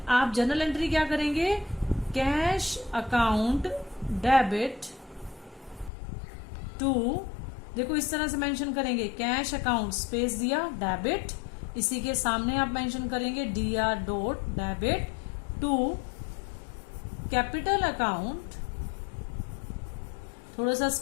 आप जर्नल एंट्री क्या करेंगे, कैश अकाउंट डेबिट टू, देखो इस तरह से मेंशन करेंगे, कैश अकाउंट स्पेस दिया डेबिट, इसी के सामने आप मेंशन करेंगे DR dot debit to capital account, थोड़ा सा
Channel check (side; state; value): right; drops out; at 5.9 s